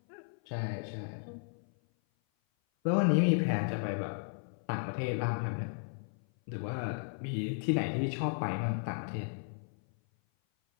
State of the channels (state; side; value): silent; right; 55 dB below the other